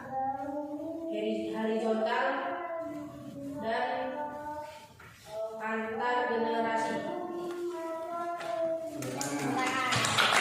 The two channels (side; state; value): both; identical; correlation 1.00